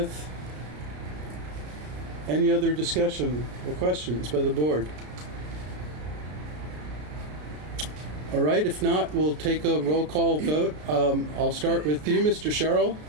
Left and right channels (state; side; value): late; left; 33 ms